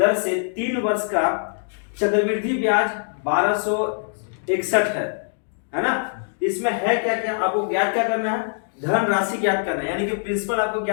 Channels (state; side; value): silent; right; digital silence